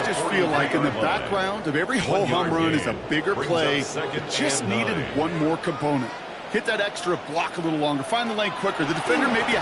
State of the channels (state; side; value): identical; both; correlation 1.00